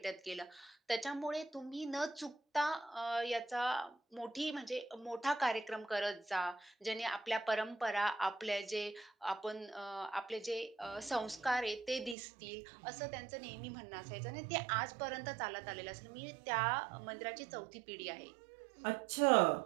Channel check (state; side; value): drops out; left; at 12.2 s